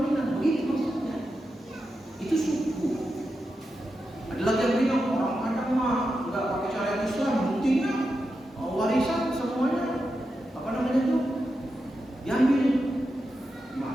Minang. Begitu maksudnya. Itu suku. Ada lagi yang bilang orang Padang mah nggak pakai syariat Islam, buktinya warisan semuanya apa namanya itu diambil.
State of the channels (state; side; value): normal; both; correlation 0.89